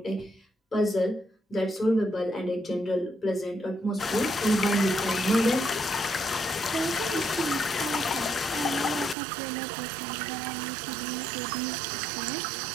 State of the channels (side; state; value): left; drops out; at 9.2 s